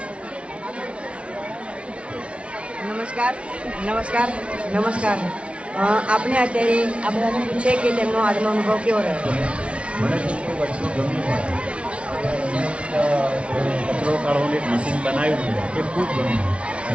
નમસ્કાર. આપણે અત્યારે આ બધાને પૂછે કે તેમનો આજનો અનુભવ કેવો રહ્યો? મને વસ્તુ ગમ્યું. કચરો કાઢવાનું એક મશીન બનાવ્યું એ ખૂબ ગમ્યું.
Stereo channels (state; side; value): late; left; 0.061 ms